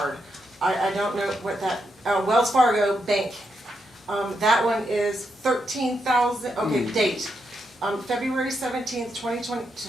I don't know what that, Wells Fargo Bank. That one is 13,000, okay, date. February 17th, 2020,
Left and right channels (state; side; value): normal; both; correlation 0.82